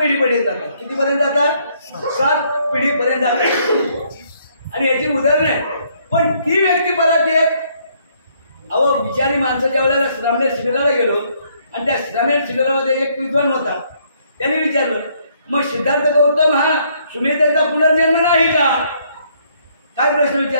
जातात. कितीपर्यंत जातात? 7 पिढीपर्यंत जातात. आणि याची उदाहरण आहे. पण ती व्यक्ती परत येत. अहो विचारी माणसं ज्या वेळेला श्रामणे शिबिराला गेलो आणि त्या श्रामणे शिबिरामध्ये एक विद्वान होता. त्याने विचारलं, मग सिद्धार्थ गौतम हा सुमेधेचा पुनर्जन्म नाही का? काय प्रश्न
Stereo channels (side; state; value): both; inverted; correlation -0.68